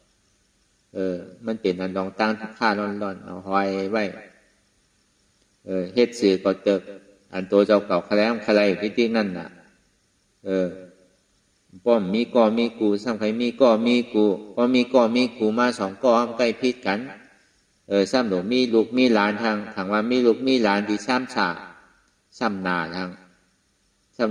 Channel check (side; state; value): both; identical; correlation 1.00